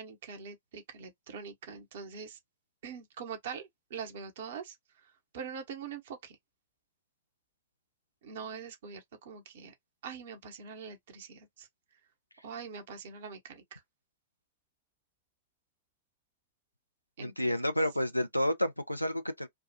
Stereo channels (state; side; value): inverted; both; correlation -0.80